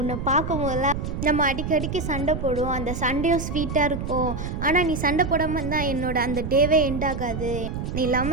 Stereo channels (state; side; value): noise; right; rumble, 5 dB below the sound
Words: பார்க்கும் போதெல்லாம் நம்ம அடிக்கடிக்கு சண்டை போடுவோம் அந்த சண்டையும் ஸ்வீட்டாக இருக்கும், ஆனால் நீ சண்டை போடாமல் தான் என்னோட அந்த டேவே எண்ட் ஆகாது, நீ